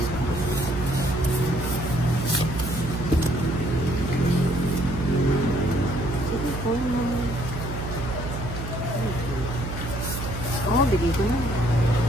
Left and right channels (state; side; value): noise; right; hum, 6 dB below the sound